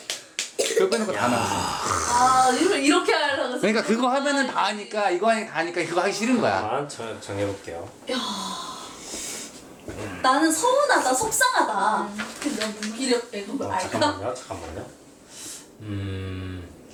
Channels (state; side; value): identical; both; correlation 1.00